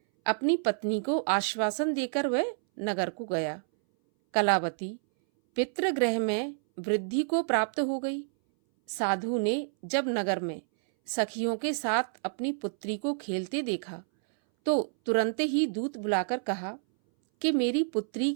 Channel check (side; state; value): left; silent; 59 dB below the other